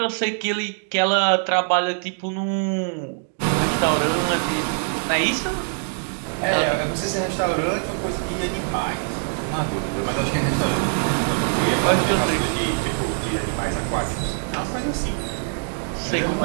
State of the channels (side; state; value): left; silent; 60 dB below the other